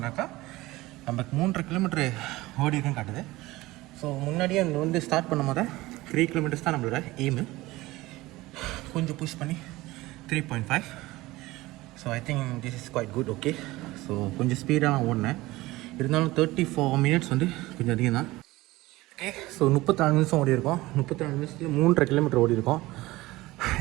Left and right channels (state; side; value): quieter; left; 19.1 dB